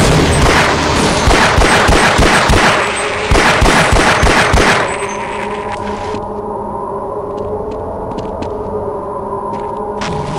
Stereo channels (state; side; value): identical; both; correlation 1.00